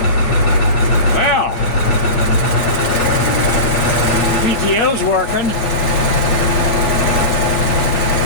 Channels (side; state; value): right; late; 9.5 ms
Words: Well, PTO's working.